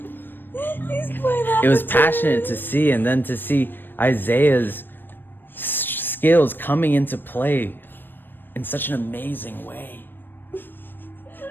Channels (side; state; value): right; late; 0.095 ms